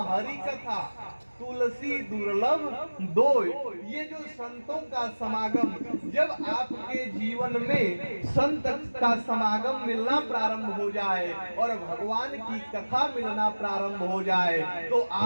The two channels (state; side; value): inverted; both; correlation -1.00